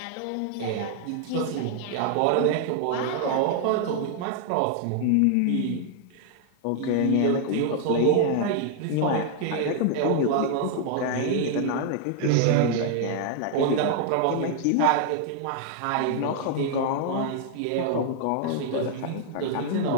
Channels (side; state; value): both; different; correlation -0.01